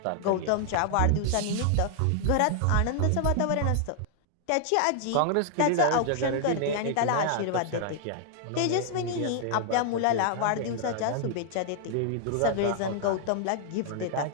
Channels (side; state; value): both; different; correlation 0.00